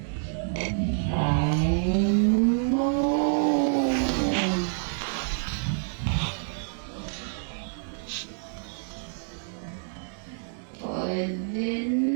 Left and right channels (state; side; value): silent; left; 60 dB below the other